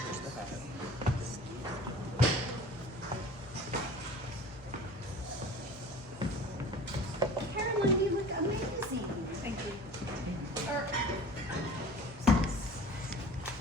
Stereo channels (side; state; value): both; normal; correlation 0.43